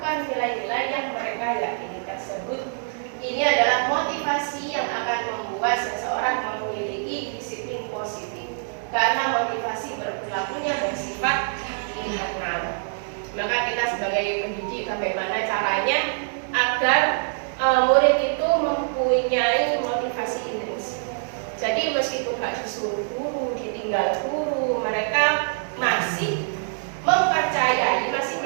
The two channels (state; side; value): silent; left; digital silence